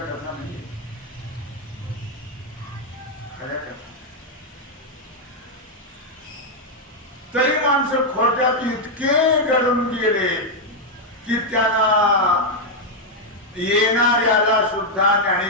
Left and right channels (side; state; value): both; normal; correlation -0.01